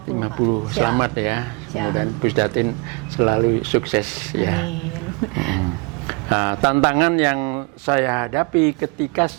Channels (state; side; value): quieter; left; 29.4 dB